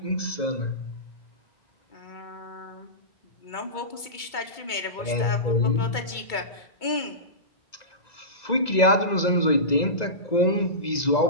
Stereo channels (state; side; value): late; right; 2.2 ms